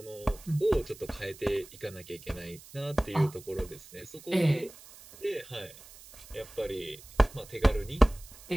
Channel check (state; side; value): noise; right; hiss, 19 dB below the sound